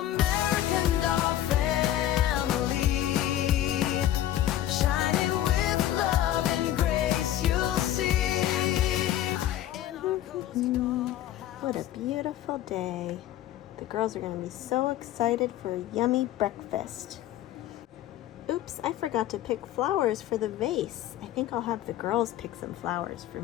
doll family, shining with love and grace, you'll see. What a beautiful day. The girls are going to be so excited for a yummy breakfast. Oops, I forgot to pick flowers for the vase. I think I'll have the girls pick some flowers for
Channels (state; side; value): quieter; right; 12.7 dB